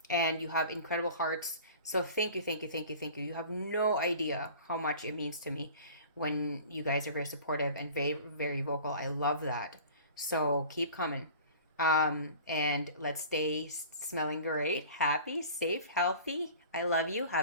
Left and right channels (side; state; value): both; inverted; correlation -0.43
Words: and you have incredible hearts. So thank you, thank you, thank you, thank you. You have no idea how much it means to me when you guys are very supportive and very, very vocal. I love that. So keep coming. And let's stay smelling great, happy, safe, healthy. I love you.